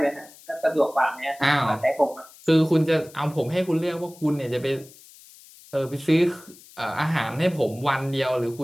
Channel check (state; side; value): noise; left; hiss, 22 dB below the sound